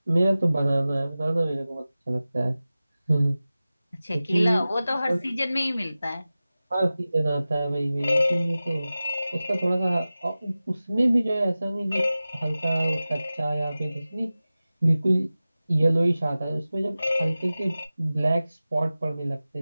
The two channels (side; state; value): both; inverted; correlation -0.96